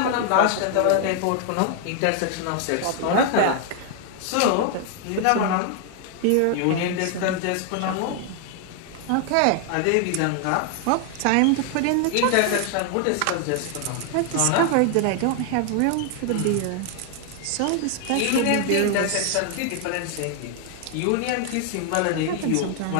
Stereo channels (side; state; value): both; different; correlation 0.00